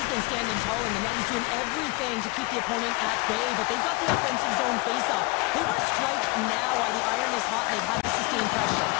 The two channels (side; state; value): right; quieter; 25.0 dB